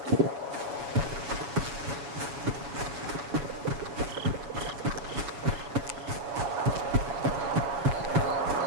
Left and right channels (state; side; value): late; left; 7.1 ms